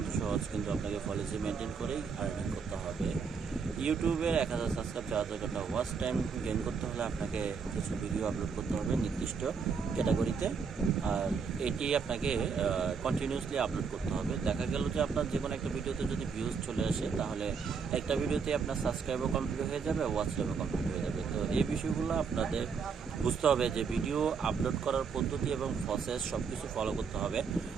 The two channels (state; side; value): quieter; left; 5.7 dB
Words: সহজ, কিন্তু আপনাকে পলিসি মেনটেন করেই আর্নিং করতে হবে। ইউটিউবের 1000 সাবস্ক্রাইব 4000 ঘন্টা ওয়াচ টাইম গেইন করতে হলে আপনাকে কিছু ভিডিও আপলোড করতে হবে নির্দিষ্ট ক্যাটাগরিতে, আর এটি আপনাকে কন্টিনিউসলি আপলোড করতে হবে। দেখা গেল যে আপনার যে কোনো একটা ভিডিওতে যদি ভিউজ চলে আসে, তাহলে একটা ভিডিওতে আপনার সাবস্ক্রাইবও কমপ্লিট হয়ে যাবে, ওয়াচ টাইমও কমপ্লিট হয়ে যাবে। তো এই বিষয়গুলো আপনাদের বুঝতে হবে যে ভিডিও আপলোড করার পদ্ধতি এবং প্রসেস সব কিছু ফলো করতে হবে।